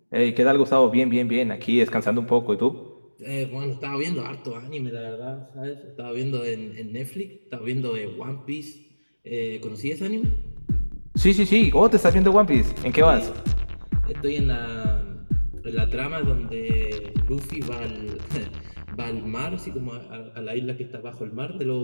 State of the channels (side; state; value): both; inverted; correlation -1.00